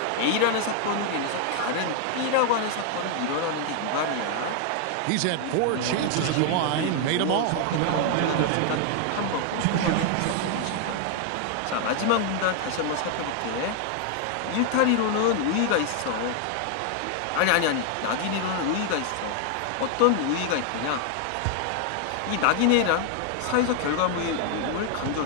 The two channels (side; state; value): both; different; correlation 0.00